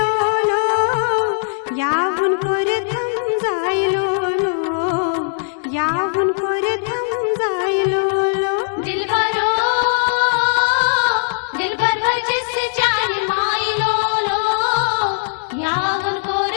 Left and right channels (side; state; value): right; silent; 63 dB below the other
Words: लो यावुन कोर थम जायलो लो यावुन कोर थम जायलो लो दिलबरो दिलबर जिस जान मायलो लो यावुन कोर